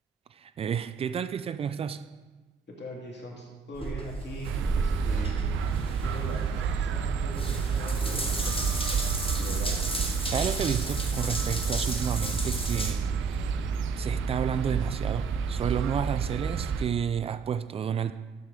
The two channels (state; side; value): quieter; left; 5.4 dB